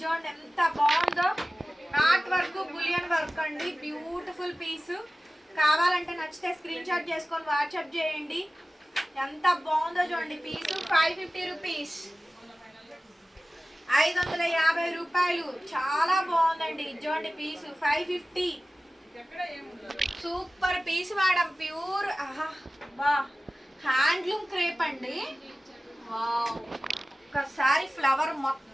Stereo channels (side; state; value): both; normal; correlation 0.96